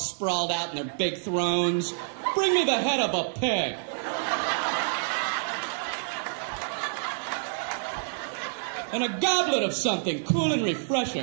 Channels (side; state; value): left; silent; digital silence